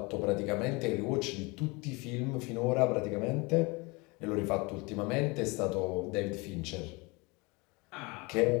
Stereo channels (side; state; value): right; quieter; 26.8 dB